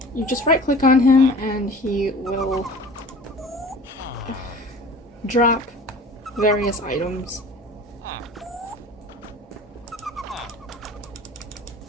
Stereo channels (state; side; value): normal; both; correlation 0.42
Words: You just right click on him and he will drop various items.